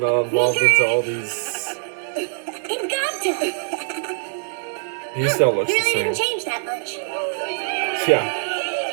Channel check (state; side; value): silent; left; digital silence